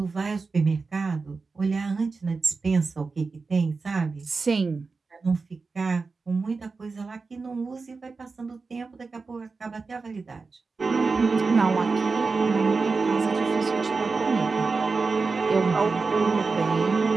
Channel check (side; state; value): left; quieter; 4.3 dB